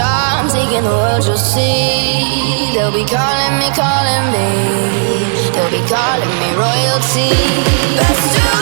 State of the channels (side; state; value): left; silent; digital silence